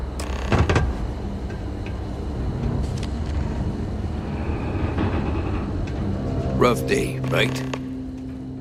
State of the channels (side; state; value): both; identical; correlation 1.00